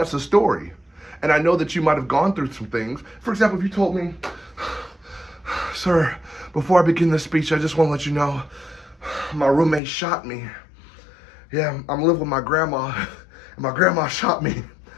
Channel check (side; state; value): right; drops out; at 9.8 s